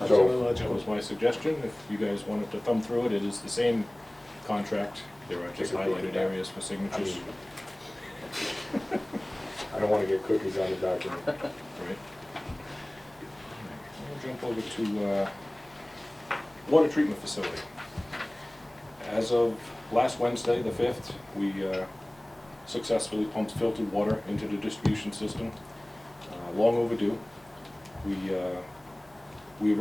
So- That was my suggestion. If you guys wanted to thumb through it, it is the same contract. There are just Take a peek at highlighted that. areas for signatures. I don't want to get cookies on the document. Right. We'll jump over to water treatment facility. As of last Wednesday, the 5th, we successfully pumped filtered water into the distribution system. Long overdue. We were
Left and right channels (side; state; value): left; noise; hum, 29 dB below the sound